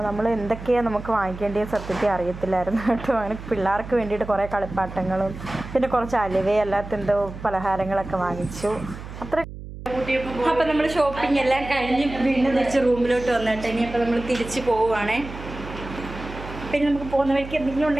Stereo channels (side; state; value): right; noise; hum, 12 dB below the sound